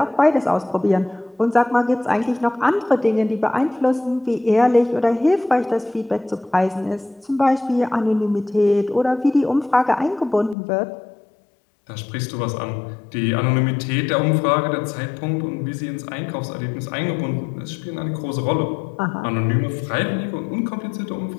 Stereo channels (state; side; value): drops out; right; at 10.6 s